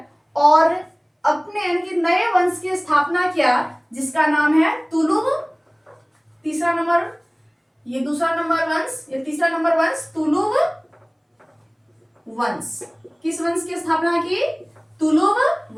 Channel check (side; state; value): both; identical; correlation 1.00